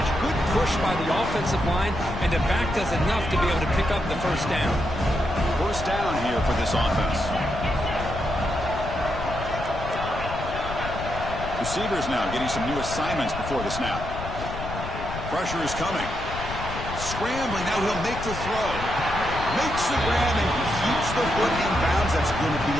Good push by the offensive line, and the back does enough to be able to pick up the first down. First down here for this offense. Receivers now getting some new assignments before the snap. Pressure is coming. Scrambling, now he'll make the throw. Makes the grab and keeps the foot in bounds. That's going to be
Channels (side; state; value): left; noise; rumble, 8 dB below the sound